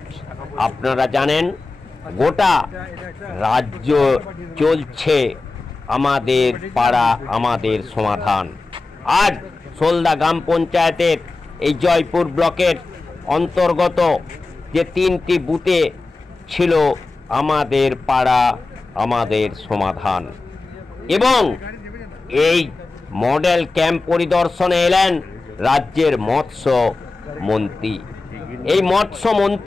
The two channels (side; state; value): right; quieter; 3.5 dB